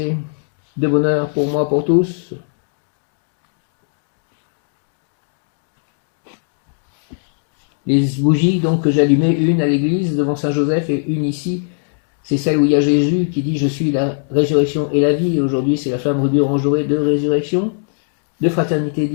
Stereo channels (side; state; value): right; silent; digital silence